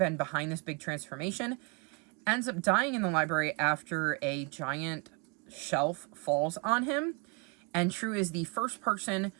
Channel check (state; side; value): quieter; left; 31.1 dB